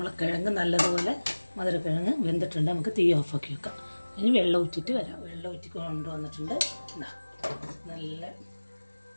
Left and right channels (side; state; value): both; inverted; correlation -1.00